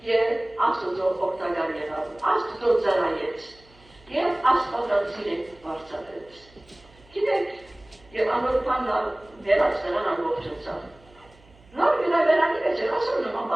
և Աստուծո օգտագար եղավ, Աստուծո ծառայեց և Աստվածածին վարձատրեց։ Գիտեք, և անոր բանալ վերած նրան ամբողջացավ։ Նոր գրավերանի մեջ էր ասոր նման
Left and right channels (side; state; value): right; noise; hum, 27 dB below the sound